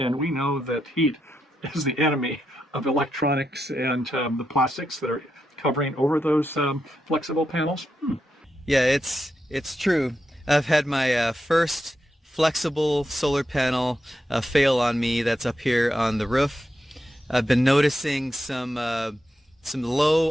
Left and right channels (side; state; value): both; normal; correlation 0.85